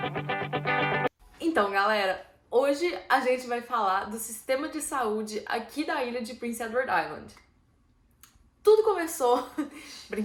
Então galera, hoje a gente vai falar do sistema de saúde aqui da ilha de Prince Edward Island. Tudo começou...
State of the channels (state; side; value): identical; both; correlation 1.00